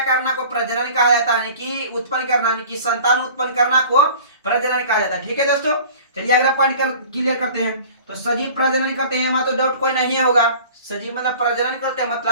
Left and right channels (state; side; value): inverted; both; correlation -0.44